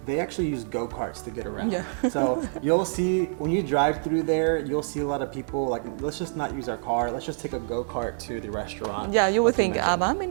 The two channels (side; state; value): left; silent; digital silence